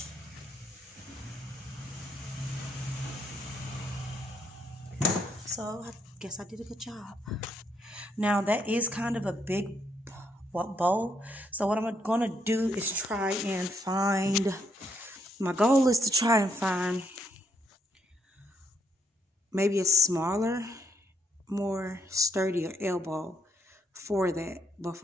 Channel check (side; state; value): both; normal; correlation 0.74